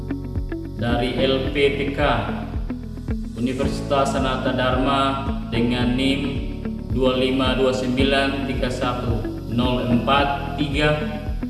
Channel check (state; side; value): identical; both; correlation 1.00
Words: dari LPPK Universitas Sanata Dharma dengan NIM